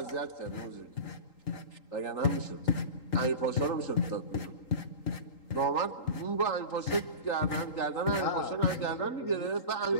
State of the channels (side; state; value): right; late; 3.8 ms